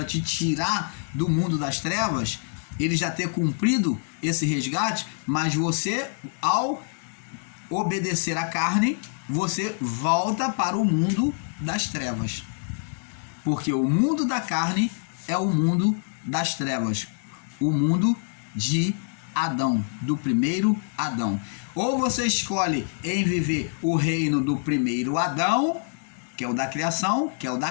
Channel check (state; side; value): silent; right; 61 dB below the other